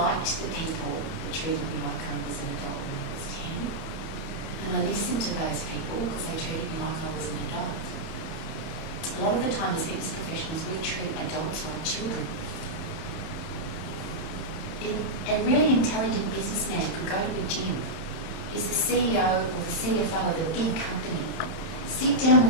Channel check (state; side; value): late; right; 31 ms